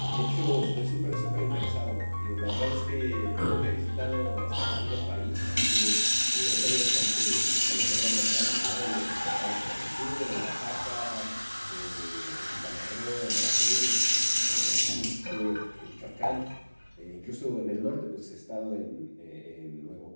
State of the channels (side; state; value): both; inverted; correlation -1.00